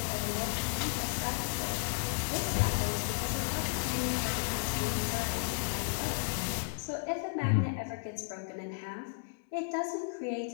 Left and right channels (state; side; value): silent; right; digital silence